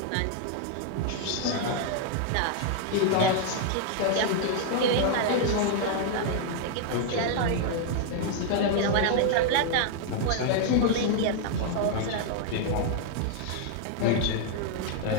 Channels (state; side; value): different; both; correlation 0.00